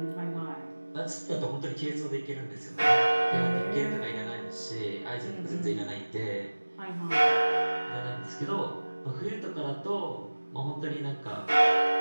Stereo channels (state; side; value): inverted; both; correlation -1.00